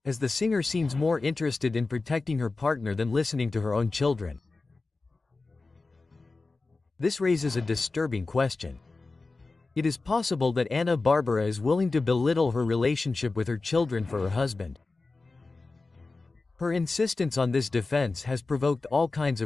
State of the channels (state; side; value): quieter; right; 3.6 dB